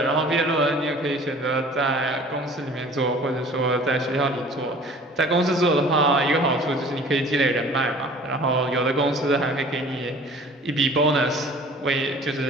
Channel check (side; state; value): both; normal; correlation 0.48